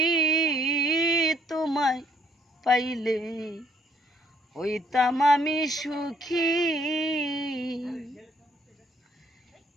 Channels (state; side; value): normal; both; correlation 0.66